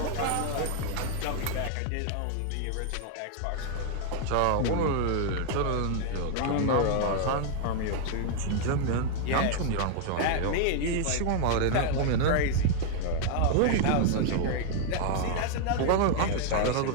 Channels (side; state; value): both; different; correlation 0.00